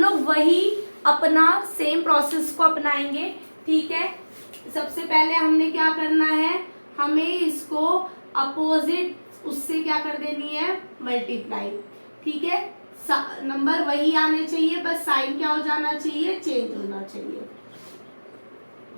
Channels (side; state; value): both; inverted; correlation -1.00